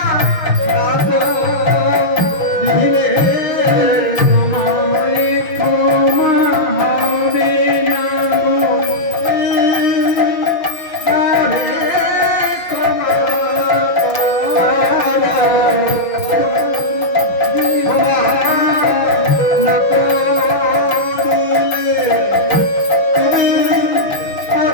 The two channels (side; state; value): right; late; 5.9 ms